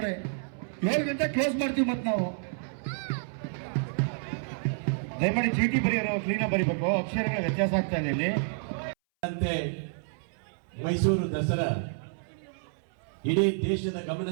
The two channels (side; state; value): left; silent; 58 dB below the other